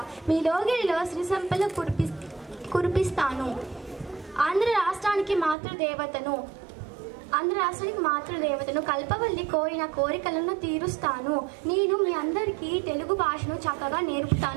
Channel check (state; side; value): drops out; left; at 5.6 s